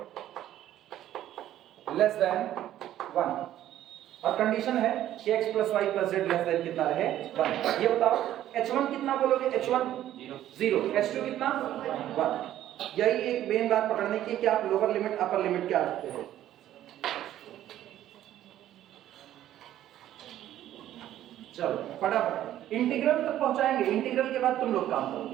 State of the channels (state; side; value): quieter; left; 12.5 dB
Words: less than 1। और कंडीशन है कि x plus Y plus z less than कितना रहे 1। ये बताओ h1 कितना बोलोगे, h1 0, h2 कितना 1। यही एक मेन बात पकड़ने की कि आप लोअर लिमिट अपर लिमिट क्या रखते हो। चलो फटाफट इंटीग्रल तक पहुंचाएंगे, इंटीग्रल के बाद तुम लोग काम